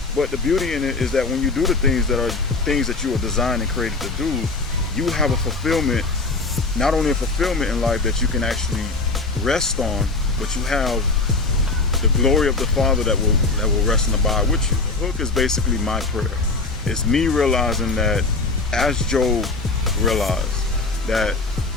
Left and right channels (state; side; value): quieter; right; 3.6 dB